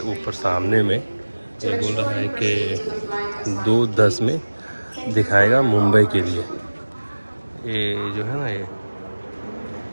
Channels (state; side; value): inverted; both; correlation -1.00